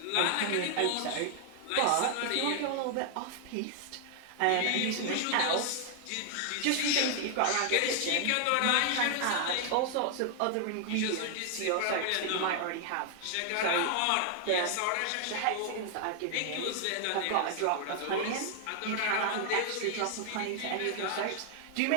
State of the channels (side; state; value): both; different; correlation 0.00